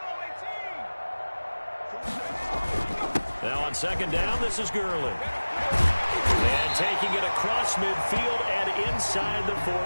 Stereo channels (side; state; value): both; inverted; correlation -1.00